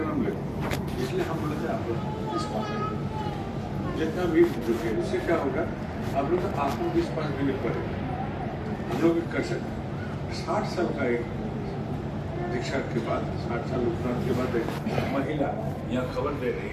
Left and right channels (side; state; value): both; identical; correlation 1.00